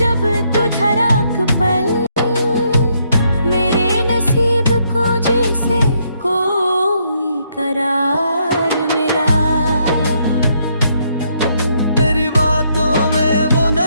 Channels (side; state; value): both; inverted; correlation -0.73